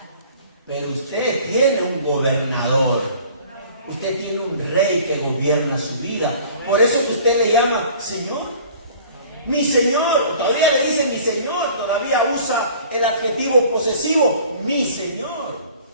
Pero usted tiene un gobernador. Usted tiene un rey que gobierna su vida. Por eso es que usted le llama Señor. Mi Señor. Todavía le dice mi Señor. Todavía usa el adjetivo posesivo. Mi Señor.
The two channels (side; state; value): both; inverted; correlation -0.49